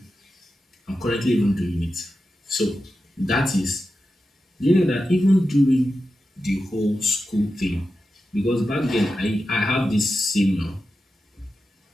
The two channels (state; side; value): normal; both; correlation 0.91